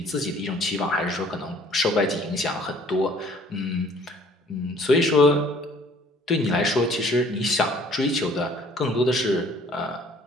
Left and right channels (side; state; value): both; normal; correlation 0.56